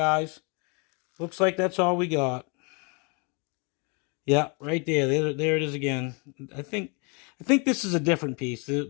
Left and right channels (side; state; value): right; quieter; 33.3 dB